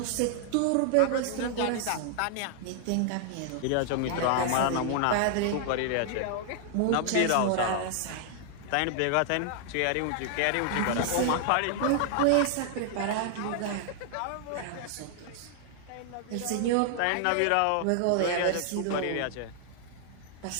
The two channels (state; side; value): different; both; correlation 0.00